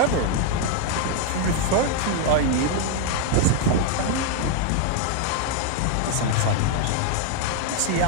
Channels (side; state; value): both; different; correlation 0.00